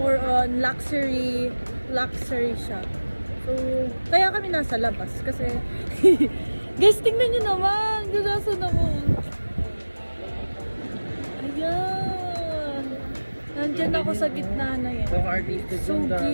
on luxury shop. So, kaya kami nasa labas kasi guys, tingnan nyo naman. Durasan ako. Ayan. Nandyan ako sa gitna na yan. So, artistic So yung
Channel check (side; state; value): both; inverted; correlation -1.00